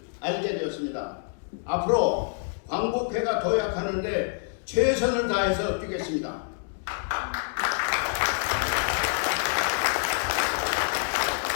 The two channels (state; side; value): silent; right; 60 dB below the other